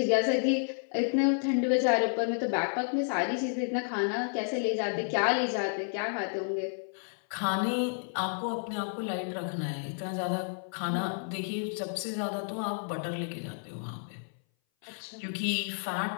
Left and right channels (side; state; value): right; silent; 57 dB below the other